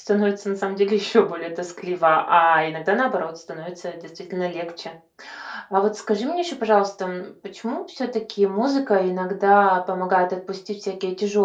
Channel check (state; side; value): identical; both; correlation 1.00